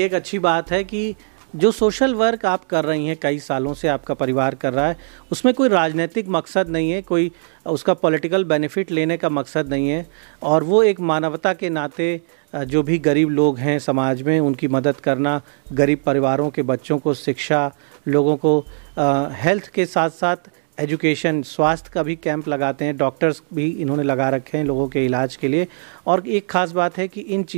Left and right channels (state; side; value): silent; left; digital silence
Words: एक अच्छी बात है कि जो सोशल वर्क आप कर रही हैं, कई सालों से आपका परिवार कर रहा है, उसमें कोई राजनीतिक मकसद नहीं है, कोई उसका पॉलिटिकल बेनिफिट लेने का मकसद नहीं है, और वो एक मानवता के नाते जो भी गरीब लोग हैं समाज में उनकी मदद करना, गरीब परिवारों के बच्चों को शिक्षा, लोगों को हेल्थ के साथ साथ एजुकेशन, स्वास्थ्य का भी कैंप लगाते हैं, डॉक्टर्स भी इन्होंने लगा रखे हैं लोगों के इलाज के लिए। और एक ख़ास बात है कि इन